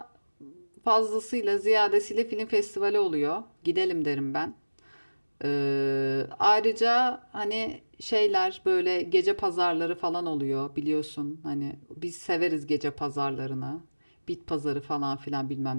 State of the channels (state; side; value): inverted; both; correlation -1.00